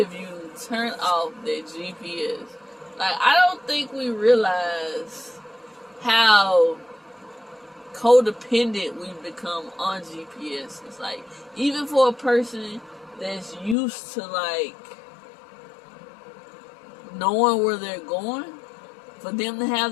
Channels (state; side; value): drops out; right; at 13.8 s